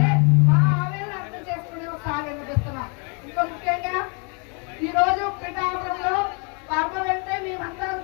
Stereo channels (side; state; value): right; quieter; 35.9 dB